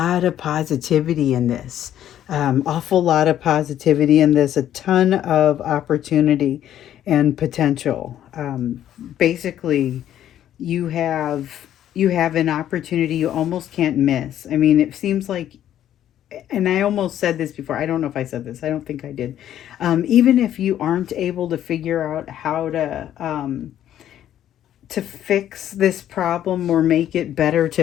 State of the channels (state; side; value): quieter; right; 11.3 dB